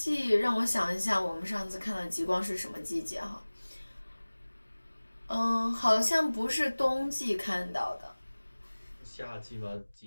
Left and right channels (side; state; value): both; inverted; correlation -1.00